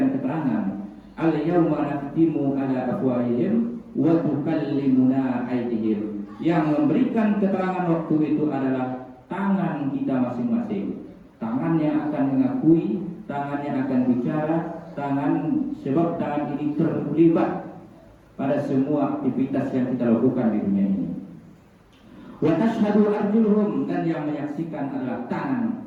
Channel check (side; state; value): both; identical; correlation 1.00